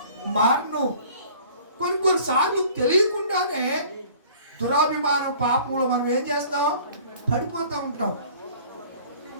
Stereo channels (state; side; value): inverted; both; correlation -0.50